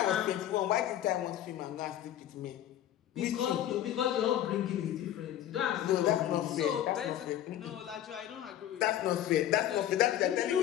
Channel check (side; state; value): right; quieter; 11.7 dB